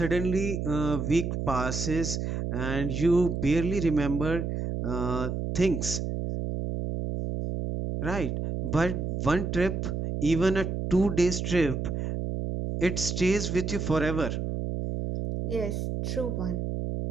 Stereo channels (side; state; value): right; noise; hum, 2 dB below the sound